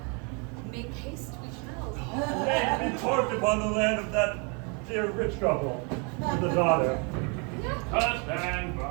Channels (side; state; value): left; quieter; 34.2 dB